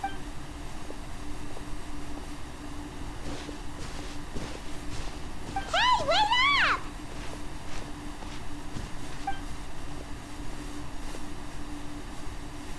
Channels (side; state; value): both; identical; correlation 1.00